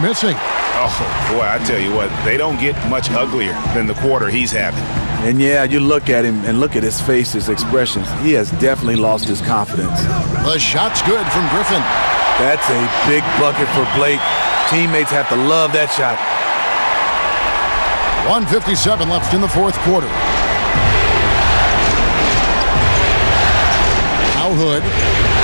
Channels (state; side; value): inverted; both; correlation -1.00